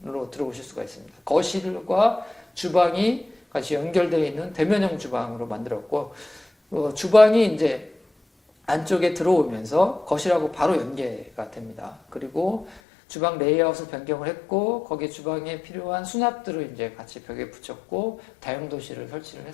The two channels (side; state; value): right; drops out; at 12.8 s